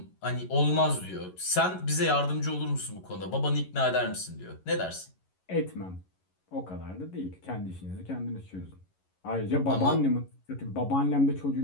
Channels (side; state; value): right; late; 11 ms